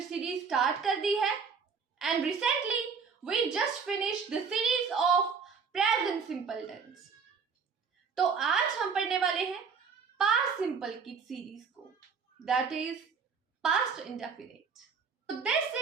सीरीज स्टार्ट कर दी है and recently we just finished the series of present simple tense. तो आज हम पढ़ने वाले हैं पास्ट सिंपल की सीरीज को, दैट इज पास्ट इंडेफिनिट। तो this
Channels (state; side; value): quieter; left; 5.8 dB